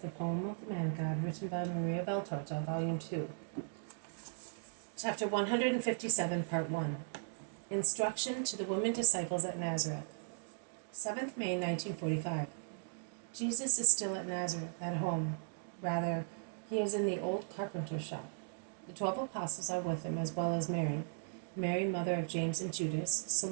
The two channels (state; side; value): silent; left; digital silence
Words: the poem of the Man God, written by Maria Beltorta, Volume 2. Chapter 157, Part 1. Instruction to the Women Disciples at Nazareth. 7th May 1945. Jesus is still at Nazareth, at home. Rather, he is in the old carpenter's shop. The 12 apostles are with him, as well as Mary, mother of James and Judas,